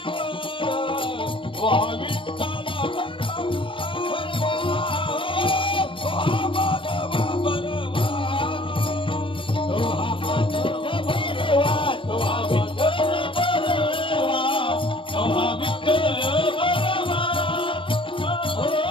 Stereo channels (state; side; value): late; right; 0.25 ms